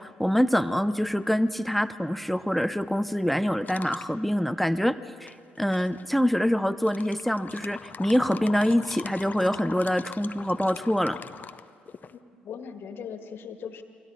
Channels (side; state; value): both; normal; correlation 0.97